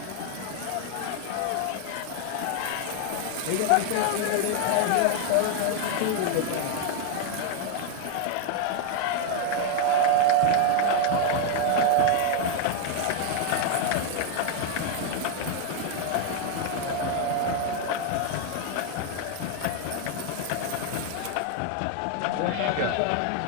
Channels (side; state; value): both; different; correlation 0.00